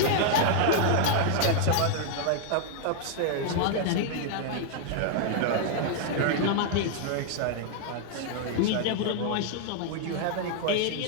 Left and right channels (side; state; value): both; different; correlation 0.00